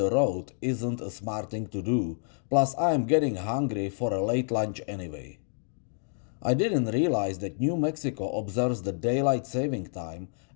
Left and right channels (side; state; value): right; silent; digital silence